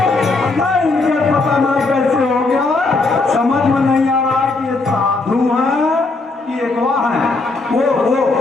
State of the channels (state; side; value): quieter; right; 3.5 dB